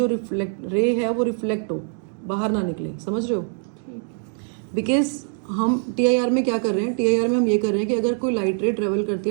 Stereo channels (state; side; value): silent; left; 60 dB below the other